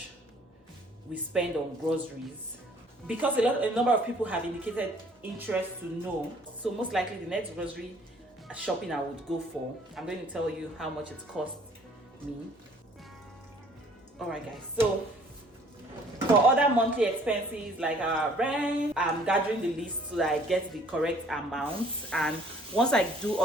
we spend on groceries, because a number of people have indicated interest to know. So most likely the next grocery shopping I would go for, I'm going to tell you how much it cost me. Alright guys, so for other monthly expenses like our rent, I'm gathering the list so that I get the correct amount, and once I do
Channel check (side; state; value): both; normal; correlation 0.57